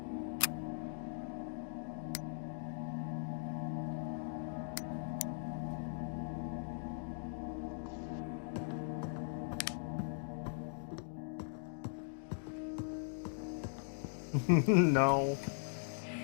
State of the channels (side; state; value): right; silent; digital silence